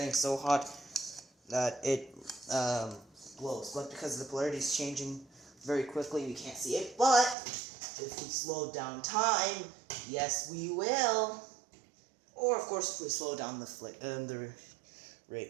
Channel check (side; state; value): left; drops out; at 7.4 s